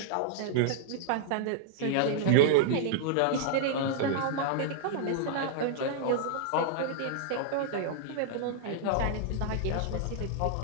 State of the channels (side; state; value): both; different; correlation -0.01